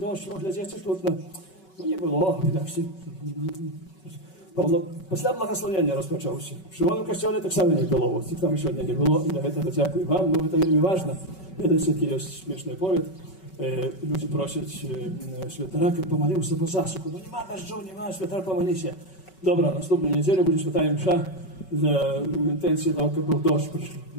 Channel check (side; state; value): right; late; 5.3 ms